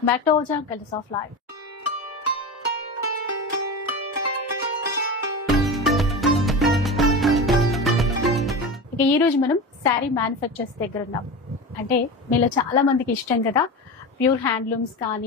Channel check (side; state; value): both; normal; correlation 0.26